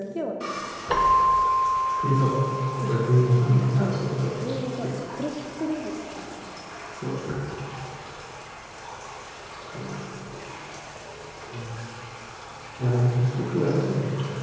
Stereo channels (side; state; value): both; identical; correlation 1.00